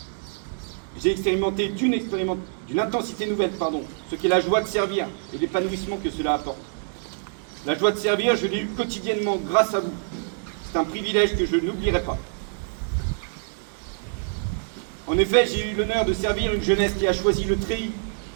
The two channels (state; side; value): silent; left; digital silence